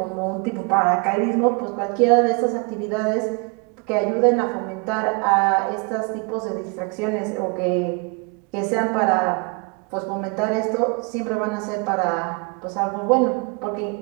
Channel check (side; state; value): left; quieter; 32.3 dB